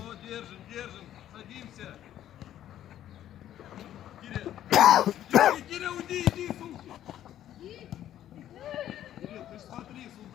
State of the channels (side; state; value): right; quieter; 11.8 dB